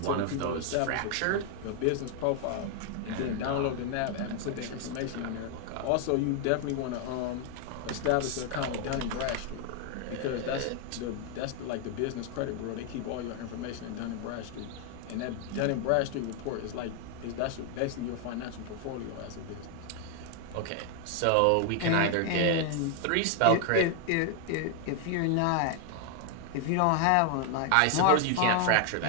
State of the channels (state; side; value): different; both; correlation 0.00